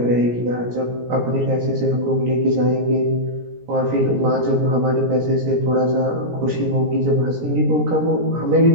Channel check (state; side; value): late; left; 17 ms